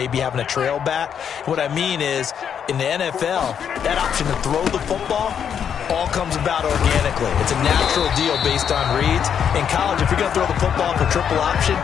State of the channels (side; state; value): right; quieter; 8.1 dB